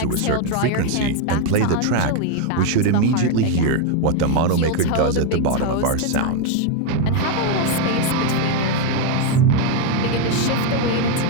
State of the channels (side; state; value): both; different; correlation 0.02